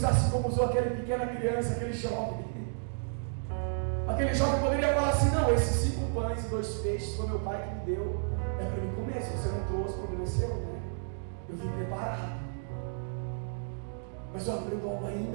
assim como usou aquela pequena criança, aquele jovem. Aquele jovem poderia falar assim: não, esses 5 pães e 2 peixes foi meu pai que me deu, é para mim comer. Se você não trouxe, o problema é seu, né? Eu vim preparado. Mas eu aprendo algo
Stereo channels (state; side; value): silent; left; digital silence